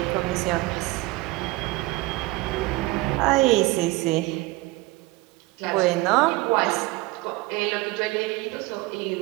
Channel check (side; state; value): left; quieter; 21.0 dB